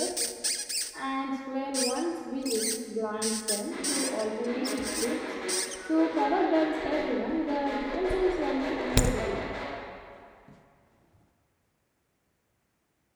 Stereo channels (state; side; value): identical; both; correlation 1.00